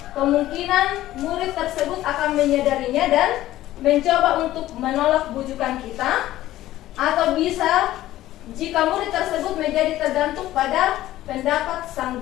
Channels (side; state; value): right; quieter; 14.7 dB